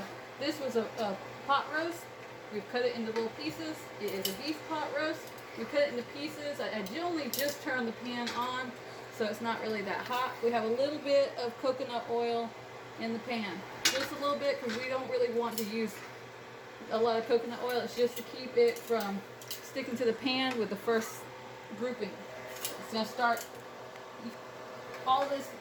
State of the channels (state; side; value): identical; both; correlation 1.00